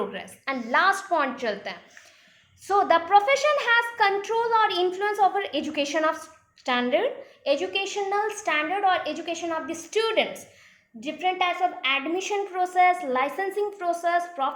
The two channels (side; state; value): both; identical; correlation 1.00